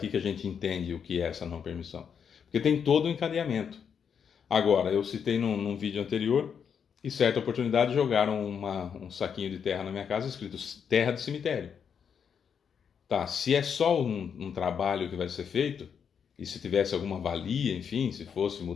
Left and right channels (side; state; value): right; quieter; 7.2 dB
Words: que a gente entende o que é essa não permissão. Porque tem todo o encadeamento. Agora, eu citei num vídeo anterior, e certa oportunidade jogaram um saquinho de terra na minha casa escrito terra de cemitério. Tá, se é só um trabalho que vai ser feito, e se tivesse alguma valia, enfim, se fosse